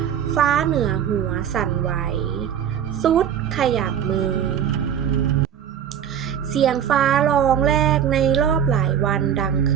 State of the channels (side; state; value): left; quieter; 9.0 dB